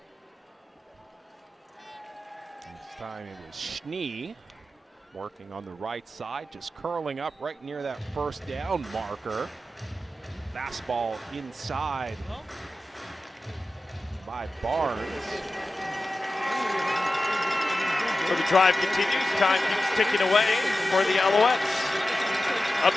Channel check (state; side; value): normal; both; correlation 0.93